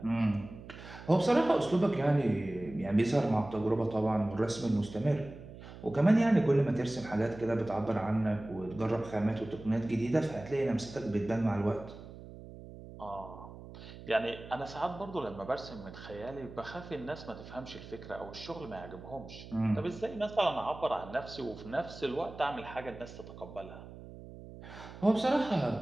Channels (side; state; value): right; noise; hum, 15 dB below the sound